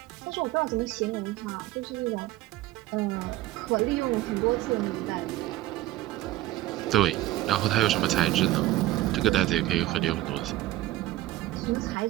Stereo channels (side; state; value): left; quieter; 15.7 dB